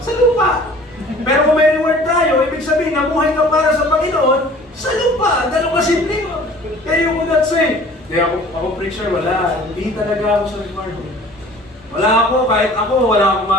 lupa. Pero kung may reward tayo, ibig sabihin namuhay ka para sa Panginoon sa lupa. Ganun ka simple. Kaya you would not say, kaya ako preacher, wala. Hindi talaga ako sa reward. Wala ako, kahit ako, wala akong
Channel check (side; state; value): both; normal; correlation 0.48